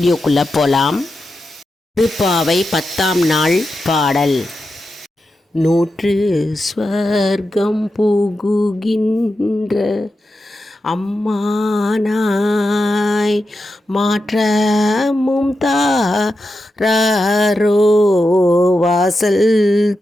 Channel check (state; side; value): normal; both; correlation 0.89